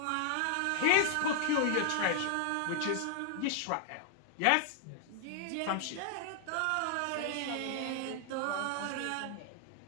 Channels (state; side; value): different; both; correlation 0.00